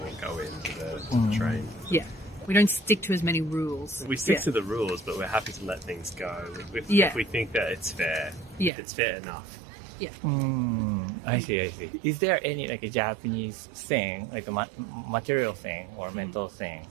all go into the train. Yeah. We don't stick to as many rules. We stick Yeah. to the rules, but we're happy to let things go if Yeah. we think that it's fair. Yeah. If it's fair enough. Yeah. I see. Is there any like a Japanese thing, like a material thing or mental thing,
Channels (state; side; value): drops out; left; at 8.7 s